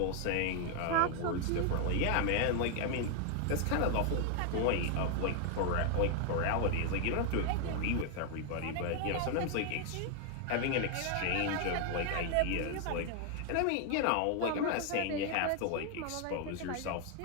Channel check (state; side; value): different; both; correlation 0.00